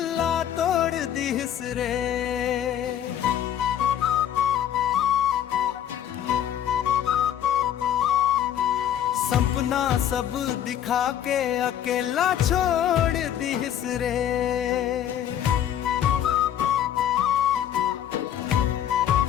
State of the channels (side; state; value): right; quieter; 10.4 dB